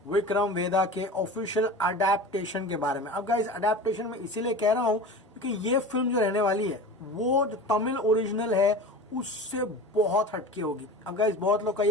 विक्रम वेदा के ऑफिशियल अडेप्टेशन के बारे में। अब गाइस, अडेप्टेशन में इसीलिए कह रहा हूँ क्योंकि ये फिल्म जो रहने वाली है वो जो तमिल ओरिजिनल है उससे बहुत हटके होगी। अब गाइस, बहुत लोग का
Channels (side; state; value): both; normal; correlation 0.34